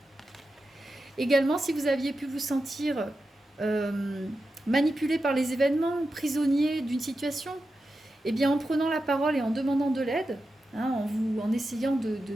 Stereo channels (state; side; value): normal; both; correlation 0.90